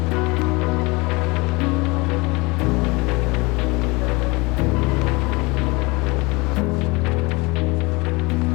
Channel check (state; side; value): quieter; right; 25.6 dB